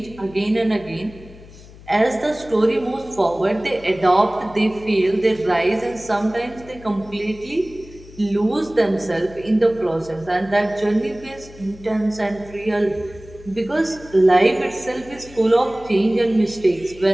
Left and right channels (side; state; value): left; noise; hum, 20 dB below the sound